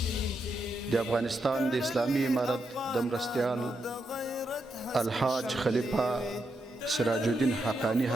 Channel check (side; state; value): both; normal; correlation 0.83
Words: د افغانستان د اسلامي امارت د مرستیال الحاج خلیفه سراج الدین حقانی